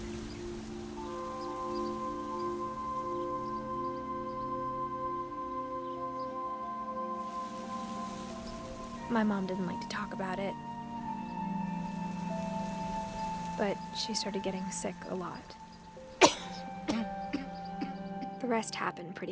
My mom didn't like to talk about it, but she started getting sick a lot. The rest happened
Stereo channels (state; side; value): identical; both; correlation 1.00